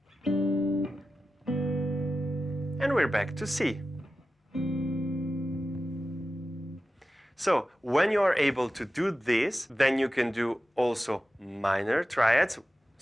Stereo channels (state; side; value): normal; both; correlation 0.93